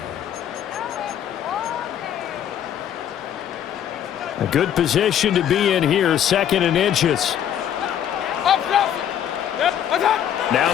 A good position to be in here, second and inches. Now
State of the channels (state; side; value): quieter; right; 9.9 dB